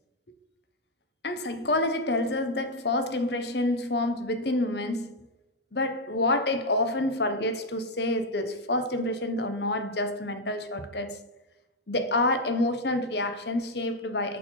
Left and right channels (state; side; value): normal; both; correlation 0.03